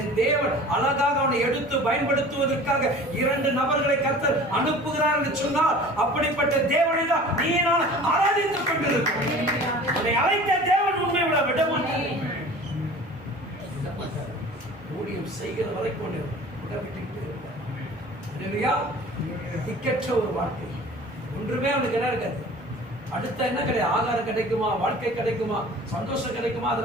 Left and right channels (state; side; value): normal; both; correlation 0.43